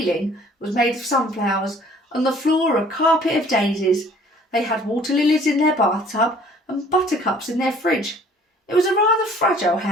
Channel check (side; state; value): both; normal; correlation 0.54